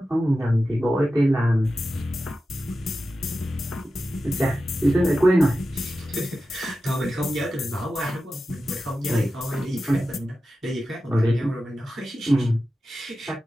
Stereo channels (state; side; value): normal; both; correlation 0.93